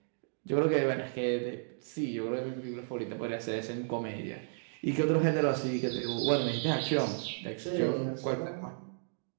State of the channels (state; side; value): silent; left; digital silence